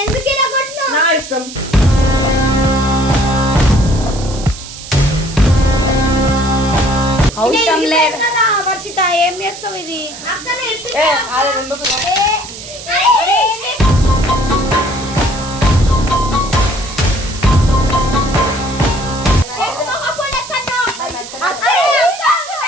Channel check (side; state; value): right; noise; hiss, 13 dB below the sound